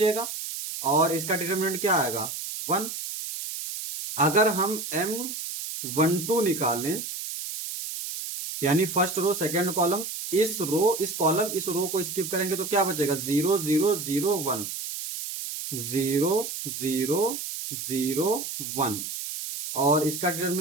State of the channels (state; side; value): noise; right; hiss, 6 dB below the sound